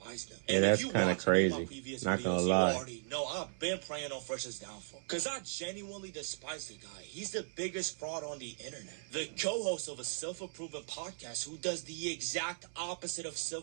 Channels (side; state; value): left; silent; 53 dB below the other